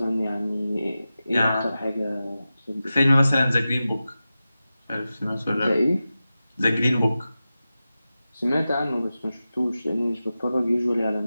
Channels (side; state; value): both; inverted; correlation -0.94